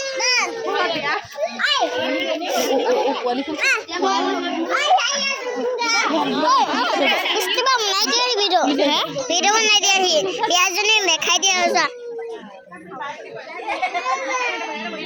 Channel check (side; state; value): both; identical; correlation 1.00